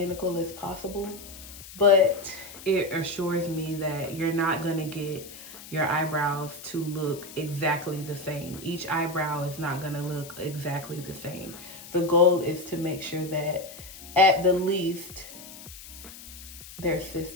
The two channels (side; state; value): left; noise; hiss, 15 dB below the sound